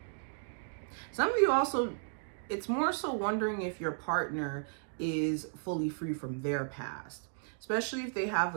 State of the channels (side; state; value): left; silent; digital silence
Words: Some of you also, it's more so wondering if your partner is fully free from their past, especially if they have